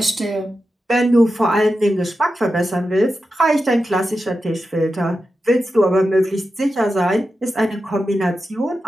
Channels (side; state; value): both; normal; correlation 0.90